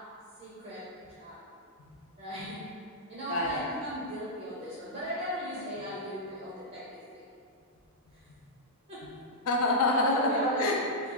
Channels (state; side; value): normal; both; correlation -0.09